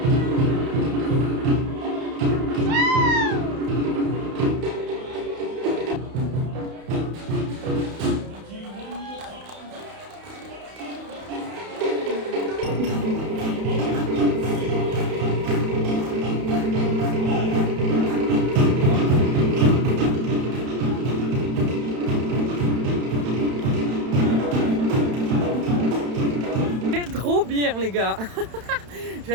Trop bien les gars.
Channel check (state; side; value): late; left; 31 ms